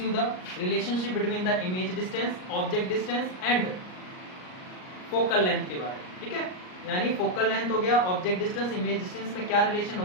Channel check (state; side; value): late; right; 38 ms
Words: the relationship between the image distance, object distance and focal length के बारे में, ठीक है। यानी फोकल लेंथ हो गया, ऑब्जेक्ट डिस्टेंस, इमेज डिस्टेंस में क्या रिलेशन